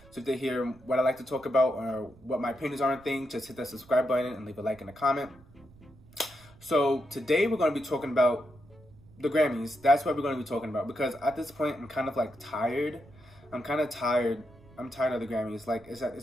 So if they hear what I like to talk about or what my opinions are on things, just hit that subscribe button and leave a like and a comment. So today we're going to be talking about the Grammys. That's what we're going to be talking about, because at this point I'm kind of like tired. I'm tired of the Grammys. Like, is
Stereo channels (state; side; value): noise; right; rumble, 25 dB below the sound